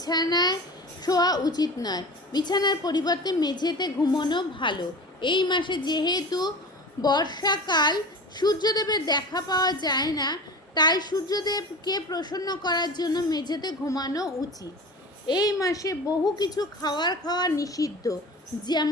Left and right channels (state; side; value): normal; both; correlation 0.34